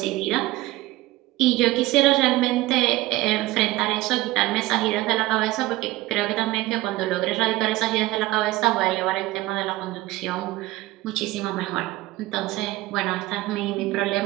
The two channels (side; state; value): left; quieter; 18.0 dB